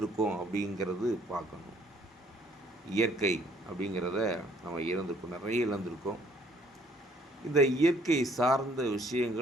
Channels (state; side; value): normal; both; correlation 0.62